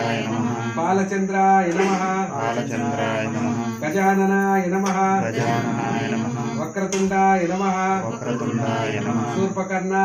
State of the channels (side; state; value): both; identical; correlation 1.00